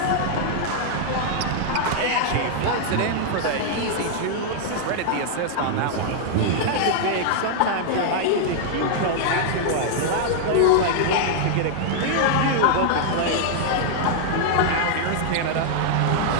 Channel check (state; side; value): different; both; correlation -0.01